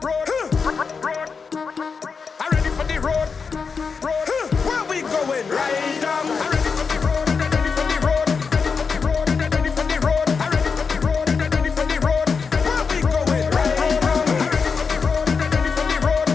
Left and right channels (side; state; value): right; quieter; 5.3 dB